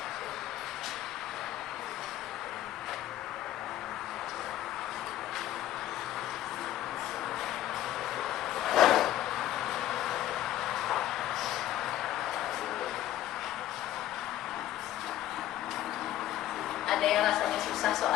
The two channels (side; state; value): right; quieter; 13.3 dB